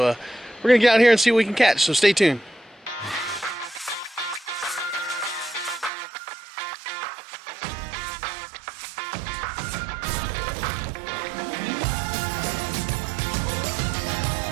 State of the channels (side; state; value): left; drops out; at 5.9 s